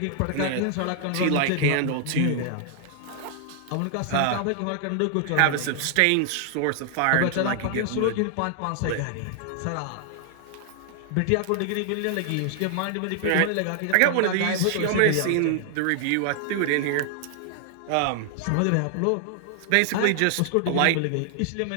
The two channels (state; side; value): different; both; correlation 0.00